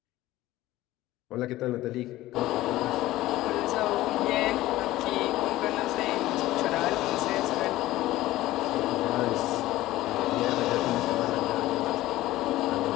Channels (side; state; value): right; quieter; 16.3 dB